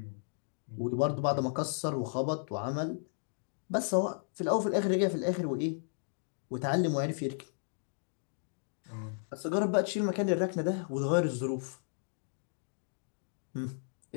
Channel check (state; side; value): silent; right; digital silence